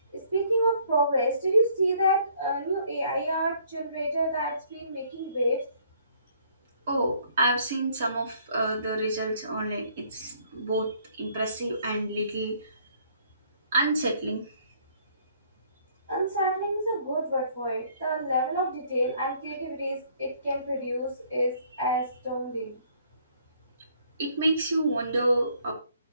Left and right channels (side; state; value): both; inverted; correlation -0.63